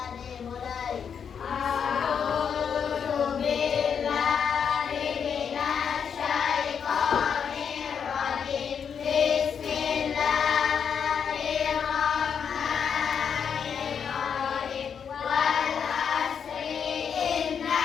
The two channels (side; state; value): right; quieter; 7.2 dB